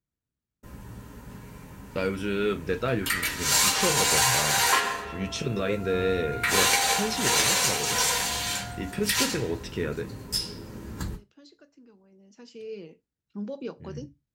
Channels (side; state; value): both; identical; correlation 1.00